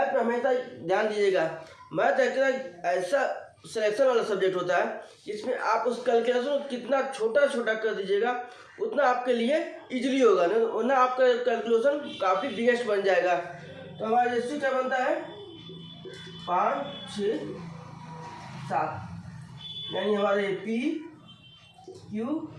में हमेशा ध्यान दीजिएगा, मैथ एक ऐसा सिलेक्शन वाला सब्जेक्ट होता है जिसमें आप उस कैलकुलेशन को कितना छोटा कर दीजिएगा उतना आपके लिए इजीली होगा, वरना आपका कैलकुलेशन काफ़ी बिगेस्ट बन जाएगा। तो हमारा रेशियो क्या बनता है? 5 6 7, यानी हमारे पी क्यू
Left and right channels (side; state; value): both; identical; correlation 1.00